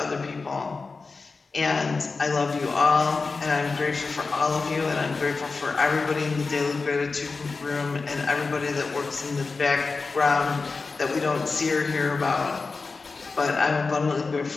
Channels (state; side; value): quieter; right; 4.2 dB